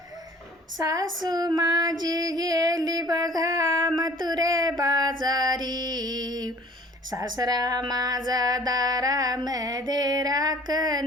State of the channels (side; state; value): both; normal; correlation 0.51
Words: सासू माझी गेली बघा मथुरे बाजारी, सासरा माझा दारामध्ये